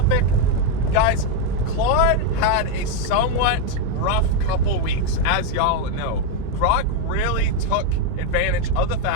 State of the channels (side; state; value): both; different; correlation 0.02